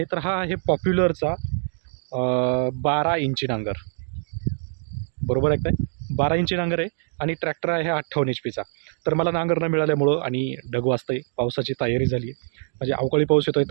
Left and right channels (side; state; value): left; silent; 62 dB below the other